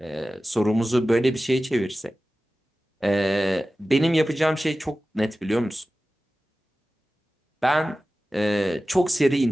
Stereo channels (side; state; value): both; normal; correlation 0.95